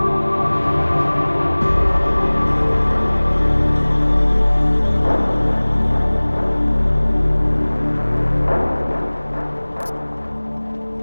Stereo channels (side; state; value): both; inverted; correlation -1.00